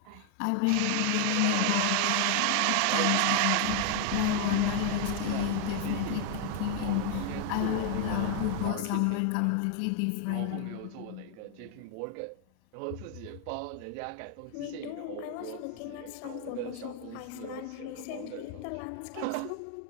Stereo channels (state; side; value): different; both; correlation 0.00